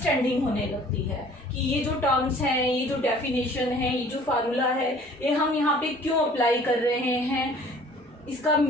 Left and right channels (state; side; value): normal; both; correlation 0.52